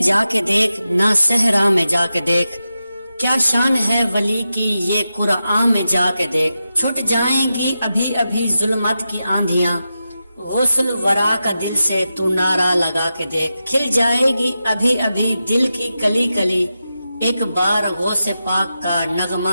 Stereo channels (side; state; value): both; inverted; correlation -0.91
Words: کے دیکھ، نہ صحرا میں جا کے دیکھ، کیا شان ہے ولی کی یہ قرآن میں جا کے دیکھ۔ چھٹ جائیں گی ابھی ابھی ظلمت کی آندھیاں، غسل ورا کا دل سے تو نعرہ لگا کے دیکھ۔ کھل جائے گی ابھی ابھی دل کی کلی کلی، ایک بار غوث پاک کا